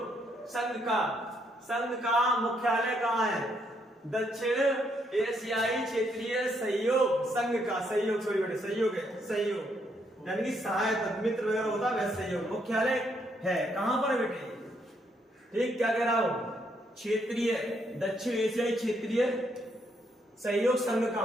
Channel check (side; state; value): both; normal; correlation 0.74